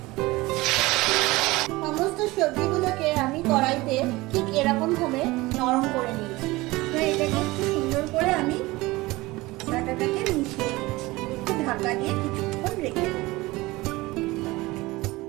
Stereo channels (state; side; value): quieter; left; 20.8 dB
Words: সমস্ত সবজিগুলোকে আমি কড়াইতে ঠিক এরকম ভাবে নরম করে নিয়েছি। এটাকে একটু সুন্দর করে আমি ডাটাটাকে মিশিয়ে নিচ্ছি। একটু ঢাকা দিয়ে কিছুক্ষণ রেখে দেব।